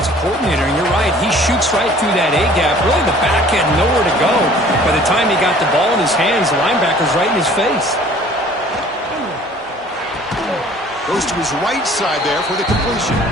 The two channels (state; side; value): normal; both; correlation 0.52